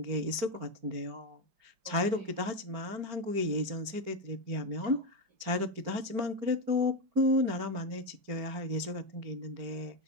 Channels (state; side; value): late; left; 4.4 ms